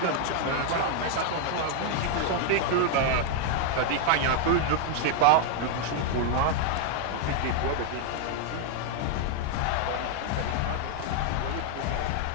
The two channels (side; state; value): both; different; correlation 0.00